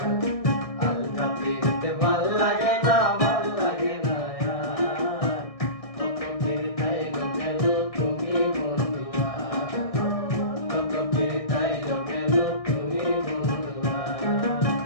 আলগা পিরিতে ভাল লাগে না, ভাল লাগে না আর, কত পিরিতাইলো গেল তুমি বন্ধু আর, কত পিরিতাইলো গেল তুমি বন্ধু আর।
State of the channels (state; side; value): late; right; 1.6 ms